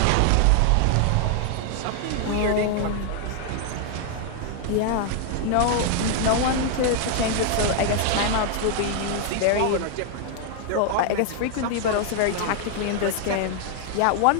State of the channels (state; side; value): different; both; correlation 0.00